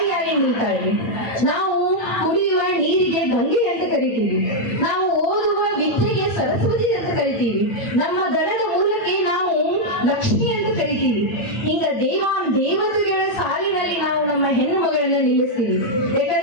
ನಿಲ್ತಾಳೆ. ನಾವು ಕುಡಿಯುವ ನೀರಿಗೆ ಗಂಗೆ ಅಂತ ಕರಿತೀವಿ, ನಾವು ಓದುವ ವಿದ್ಯೆಗೆ ಸರಸ್ವತಿ ಅಂತ ಕರಿತೀವಿ, ನಮ್ಮ ದನದ ಮೂಲಕ್ಕೆ ನಾವು ಲಕ್ಷ್ಮಿ ಅಂತ ಕರಿತೀವಿ. ಹಿಂಗ ದೇವತೆಗಳ ಸಾಲಿನಲ್ಲಿ ನಾವು ನಮ್ಮ ಹೆಣ್ಣು ಮಗಳನ್ನ ನಿಲ್ಲಿಸ್ತೀವಿ.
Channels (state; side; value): late; right; 8.9 ms